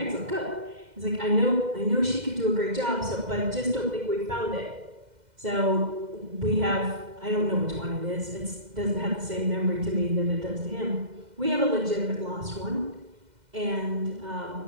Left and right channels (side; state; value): left; late; 2.0 ms